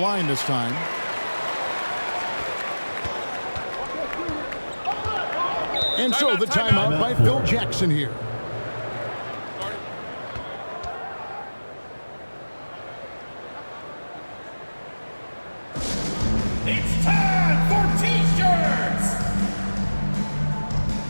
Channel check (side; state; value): both; inverted; correlation -1.00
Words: this time. And so the timeout by Phil Jackson here. It's time for T-shirts!